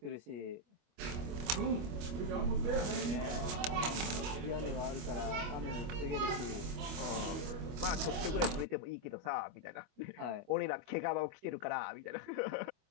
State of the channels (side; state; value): left; late; 25 ms